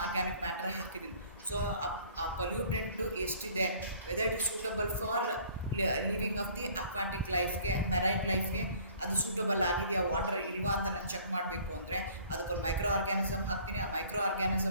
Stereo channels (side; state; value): both; inverted; correlation -0.54